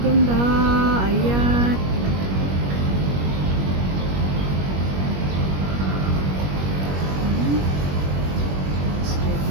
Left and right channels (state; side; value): late; left; 21 ms